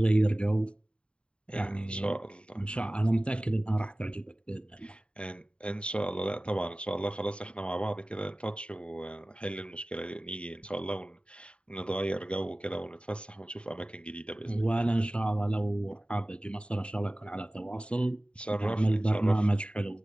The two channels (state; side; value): late; right; 0.055 ms